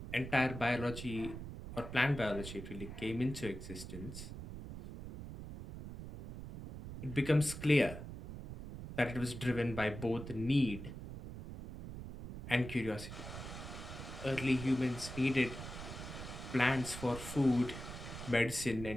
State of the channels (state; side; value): noise; right; rumble, 10 dB below the sound